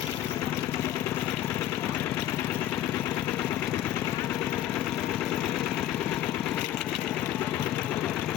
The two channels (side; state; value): right; quieter; 12.2 dB